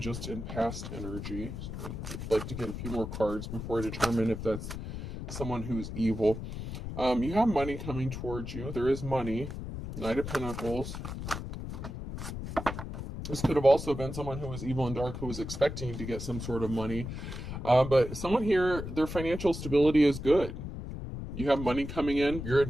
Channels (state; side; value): noise; left; rumble, 7 dB below the sound